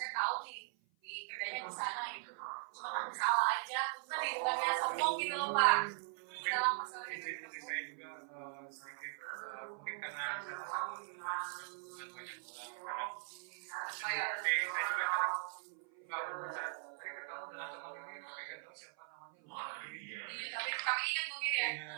tahu nih di kerjanya di sana gitu. Cuma takut salah aja. Tadi bukannya sombong gitu loh Pak. Dalam masalah Jadi saya juga sedikit mungkin karena saya sama dengan banyak orang. Saya juga kadang nggak bisa tadi ketemu dengan teman ini tapi nggak tahu siapa namanya. iya, tapi ingat mungkin ya.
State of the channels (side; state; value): left; silent; 51 dB below the other